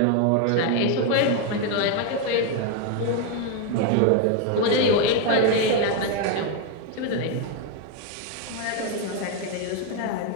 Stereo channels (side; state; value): both; different; correlation 0.01